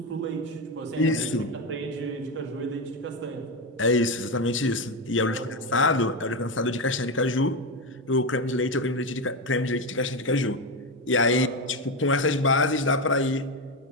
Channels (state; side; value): normal; both; correlation 0.12